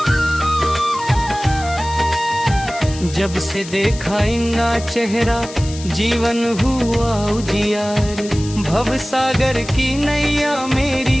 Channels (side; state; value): left; noise; hiss, 14 dB below the sound